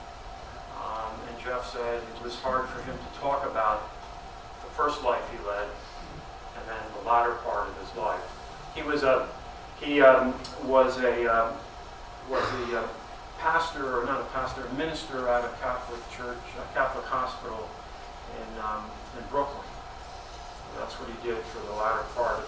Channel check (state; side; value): identical; both; correlation 1.00